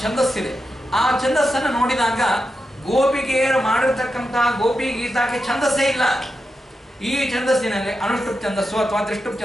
ಛಂದಸ್ಸಿದೆ. ಆ ಛಂದಸ್ಸನ್ನು ನೋಡಿದಾಗ ಗೋಪಿಕೆಯರು ಮಾಡಿರ್ತಕ್ಕಂಥ ಗೋಪಿ ಗೀತಾಕ್ಕೆ ಛಂದಸ್ಸೇ ಇಲ್ಲ. ಈ ಛಂದಸ್ಸಿನಲ್ಲಿ ಅನುಷ್ಠುಪ್ ಛಂದಸ್ಸು ಅಥವಾ ತ್ರಿಷ್ಠುಪ್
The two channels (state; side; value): normal; both; correlation 0.88